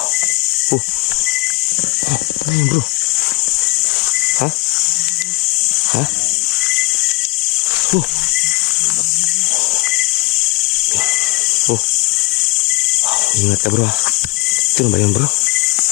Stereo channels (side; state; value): right; quieter; 25.8 dB